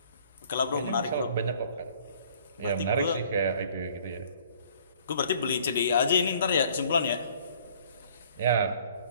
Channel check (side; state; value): both; inverted; correlation -0.56